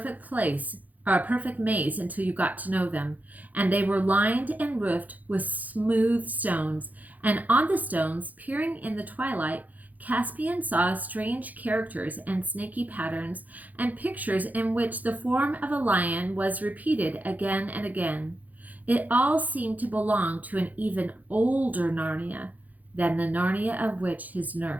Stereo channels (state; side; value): late; left; 0.080 ms